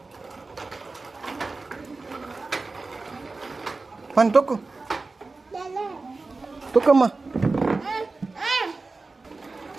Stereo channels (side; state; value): left; quieter; 3.7 dB